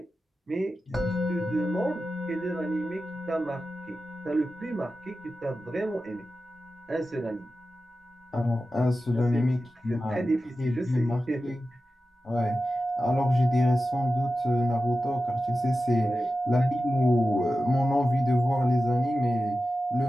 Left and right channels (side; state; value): both; normal; correlation 0.93